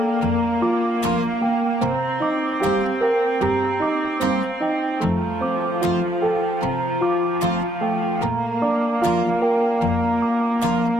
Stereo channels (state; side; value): normal; both; correlation 0.72